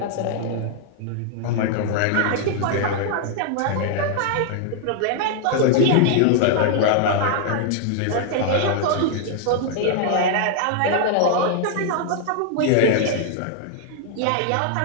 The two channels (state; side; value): different; both; correlation 0.00